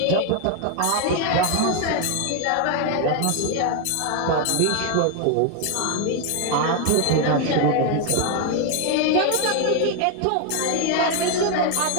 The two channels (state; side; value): different; both; correlation 0.01